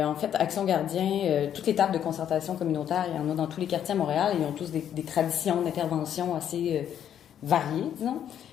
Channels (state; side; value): quieter; right; 9.7 dB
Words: en fait, Action Gardien, toutes les tables de concertation communautaire, il y en a dans tous les quartiers à Montréal, et ils ont tous des traditions d'intervention assez variées, disons.